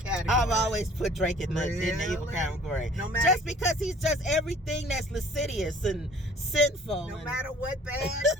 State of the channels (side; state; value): both; normal; correlation 0.52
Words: I've always put Drake in the evil Really? category. No matter- Just because he's just everything that's lascivious and sinful. No and matter what bad